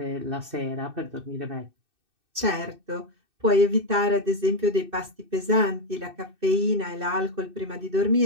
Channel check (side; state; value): left; late; 2.6 ms